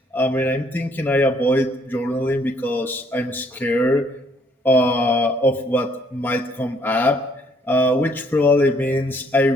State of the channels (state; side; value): normal; both; correlation 0.65